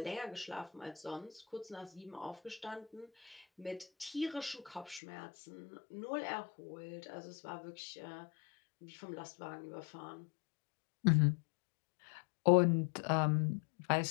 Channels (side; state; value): right; drops out; at 5.0 s